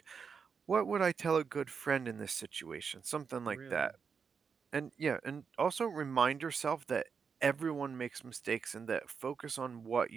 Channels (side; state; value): left; quieter; 6.0 dB